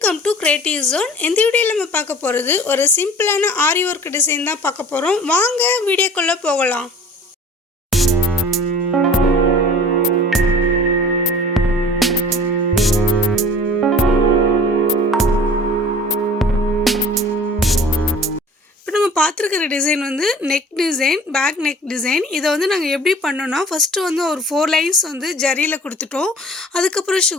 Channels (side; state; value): both; normal; correlation 0.45